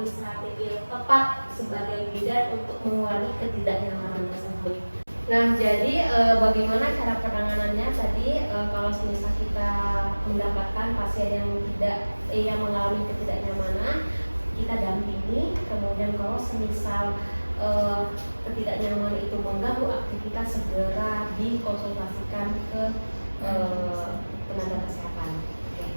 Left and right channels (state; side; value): inverted; both; correlation -1.00